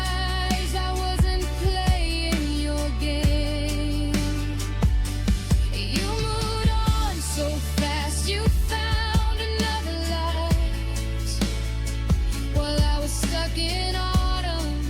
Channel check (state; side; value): identical; both; correlation 1.00